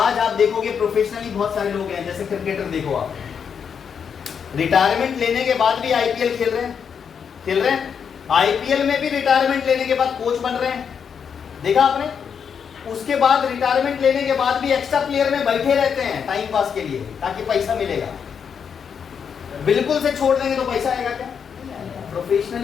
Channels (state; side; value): quieter; right; 7.0 dB